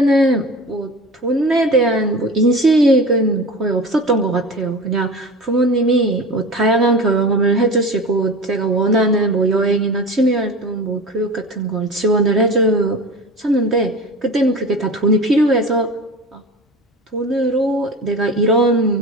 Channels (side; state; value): both; normal; correlation 0.33